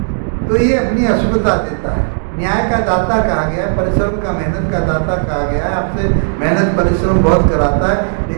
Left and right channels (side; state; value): left; silent; digital silence